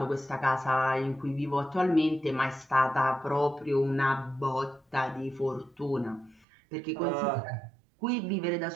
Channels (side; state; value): left; drops out; at 6.5 s